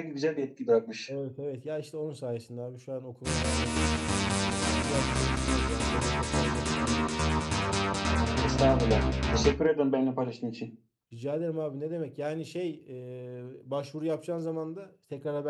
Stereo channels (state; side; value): identical; both; correlation 1.00